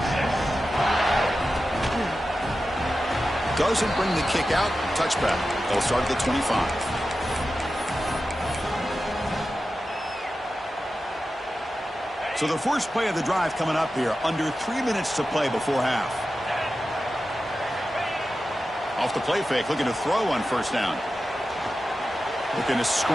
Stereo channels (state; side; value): normal; both; correlation 0.92